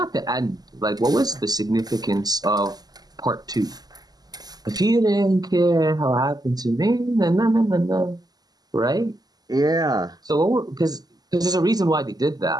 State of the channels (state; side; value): late; left; 0.19 ms